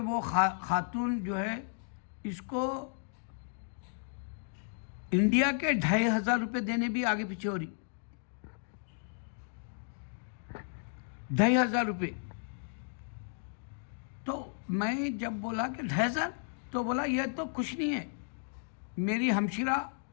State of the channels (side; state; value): right; silent; digital silence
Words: وہ خاتون جو ہے اس کو انڈیا کے 2500 روپے دینے بھی آگے پیچھے ہو رہی۔ 2500 روپے تو میں جب بولا کہ 2500 تو بولا یہ تو کچھ نہیں ہے، میری ہمشیرہ